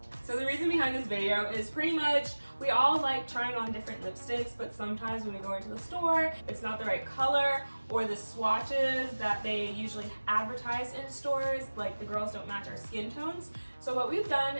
So the reason behind this video is pretty much we all like trying on different lipsticks, but sometimes when we go into the store, it's not the right color, or the swatches that they usually advertise in stores, like the girls don't match our skin tones. So what we've done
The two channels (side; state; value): both; inverted; correlation -1.00